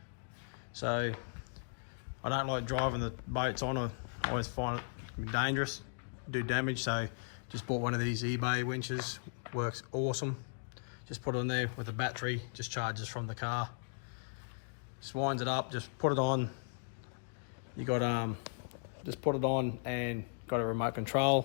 So I don't like driving the boats on. I always find it dangerous, do damage. So just bought one of these eBay winches. Works awesome. Just put it in there with a battery, just charges from the car. Just winds it up, just put it on. You got just put it on and got a remote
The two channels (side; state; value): right; silent; digital silence